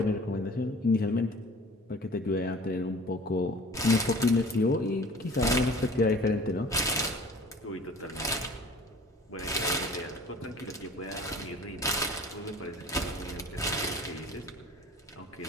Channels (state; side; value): normal; both; correlation 0.45